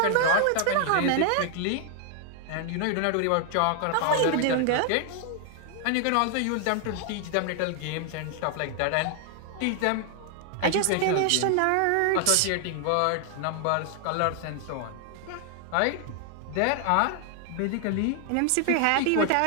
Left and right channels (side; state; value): both; different; correlation 0.00